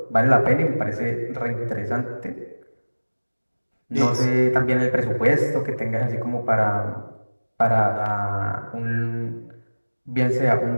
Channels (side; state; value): both; inverted; correlation -1.00